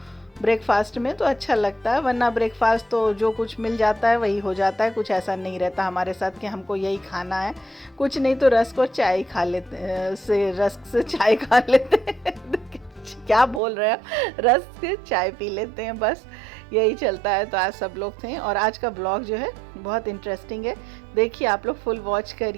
ब्रेकफास्ट में तो अच्छा लगता है, वरना ब्रेकफास्ट तो जो कुछ मिल जाता है वही हो जाता है। कुछ ऐसा नहीं रहता हमारे साथ कि हमको यही खाना है, कुछ नहीं तो रस्क और चाय खा लेते रस्क से चाय खा लेते हैं क्या बोल रहे हैं, रस्क से चाय पी लेते हैं, बस यही चलता है। तो आज सब लोग थे और आज का ब्लॉग जो है बहुत इंटरेस्टिंग है। देखिए आप लोग फुल वॉच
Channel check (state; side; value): drops out; left; at 13.6 s